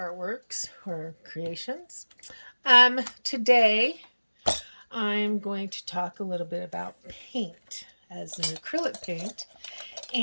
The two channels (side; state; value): both; inverted; correlation -1.00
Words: or Creations. Today I'm going to talk a little bit about paint as an acrylic paint